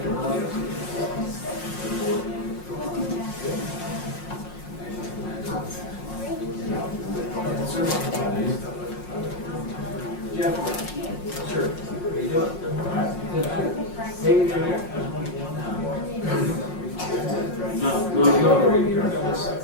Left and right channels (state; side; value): late; right; 5.6 ms